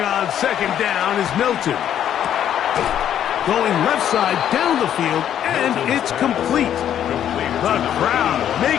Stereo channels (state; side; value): quieter; right; 10.2 dB